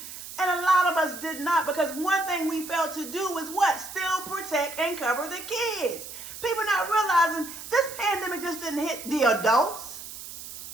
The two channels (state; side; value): noise; right; hiss, 12 dB below the sound